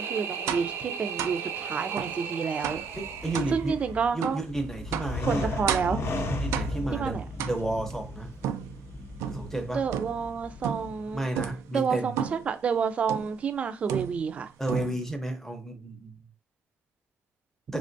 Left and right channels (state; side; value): quieter; left; 4.3 dB